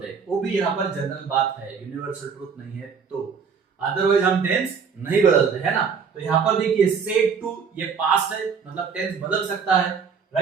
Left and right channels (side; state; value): left; quieter; 6.1 dB